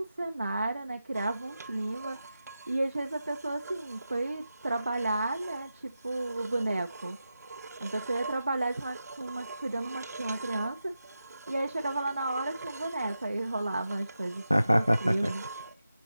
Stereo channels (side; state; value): both; inverted; correlation -0.90